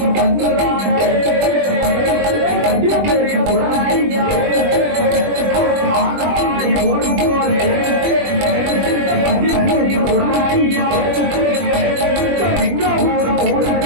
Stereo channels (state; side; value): late; left; 21 ms